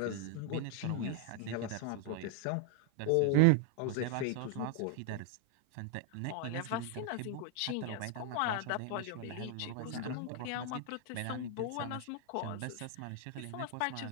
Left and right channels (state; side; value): different; both; correlation 0.00